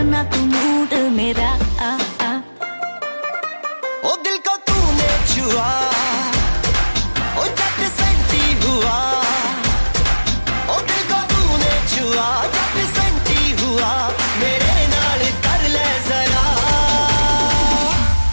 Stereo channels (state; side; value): inverted; both; correlation -1.00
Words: तू मूड मेरा आ आ। ओ दिल को तूने छुआ, ओ जट सेंटी हुआ, ओ दिल को तूने छुआ, जट सेंटी हुआ, मेरे नाल कर ले जरा।